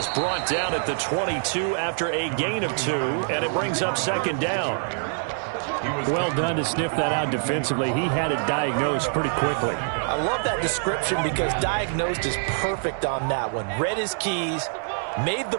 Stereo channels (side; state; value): left; silent; digital silence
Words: brought down at the 22 after a gain of 2, and it brings up second down. Well done to sniff that out defensively. He had it diagnosed pretty quickly. I love that description because diagnosed is perfect on that one. Read his keys, made the